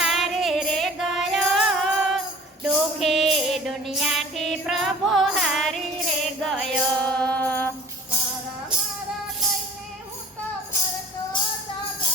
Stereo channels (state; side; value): normal; both; correlation 0.45